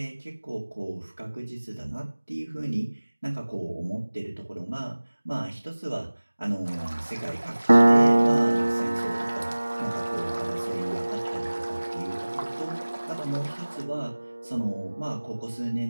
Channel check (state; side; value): inverted; both; correlation -1.00